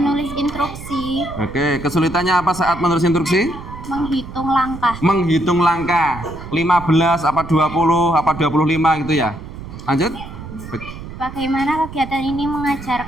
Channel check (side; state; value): right; noise; rumble, 12 dB below the sound